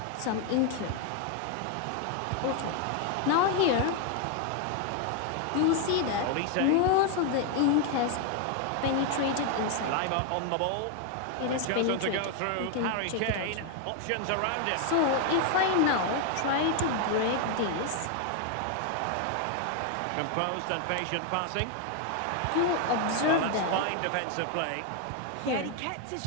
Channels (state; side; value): different; both; correlation 0.01